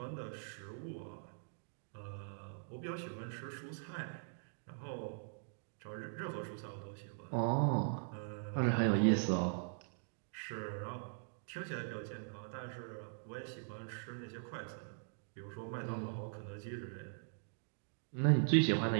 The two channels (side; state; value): left; silent; digital silence